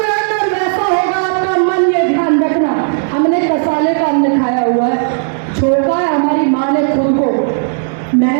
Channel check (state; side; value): silent; left; digital silence